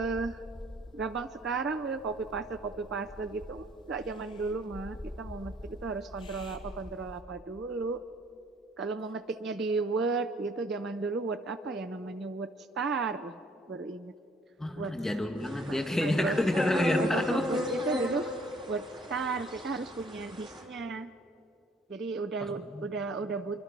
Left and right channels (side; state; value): both; normal; correlation 0.60